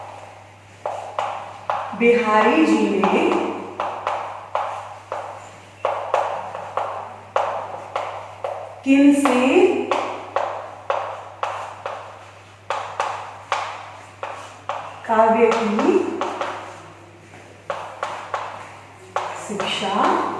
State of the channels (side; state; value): both; identical; correlation 1.00